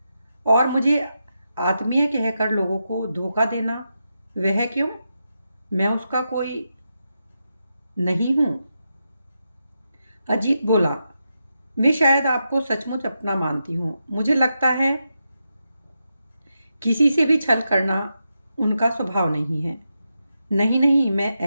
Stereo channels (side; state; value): both; inverted; correlation -0.86